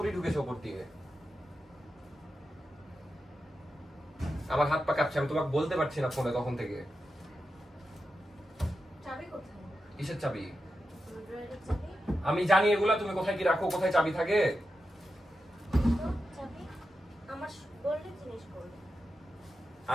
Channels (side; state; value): both; normal; correlation 0.89